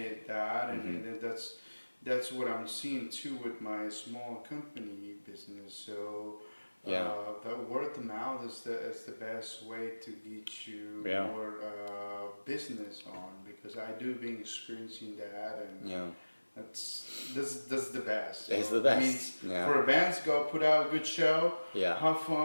that's what I'm seeing too with my small company business. So the word of mouth is the best way to get you more business on, because I do been experiencing that, and that's the best. It's the best. I mean, for a band to go put out a good show, have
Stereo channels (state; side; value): inverted; both; correlation -1.00